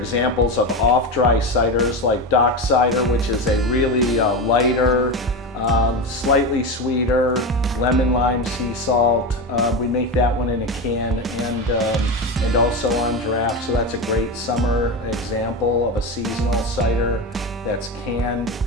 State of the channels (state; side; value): normal; both; correlation 0.19